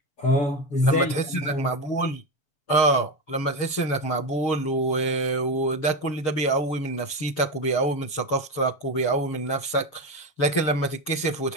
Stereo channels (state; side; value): late; right; 7.1 ms